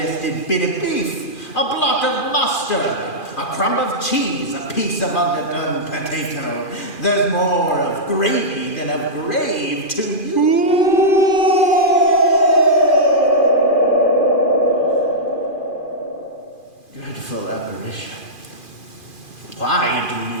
bit of beef, a blot of mustard, a crumb of cheese, a piece of underdone potato. There's more of gravy than of grave to you. Dreadful apparition. Why do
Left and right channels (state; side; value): late; right; 2.4 ms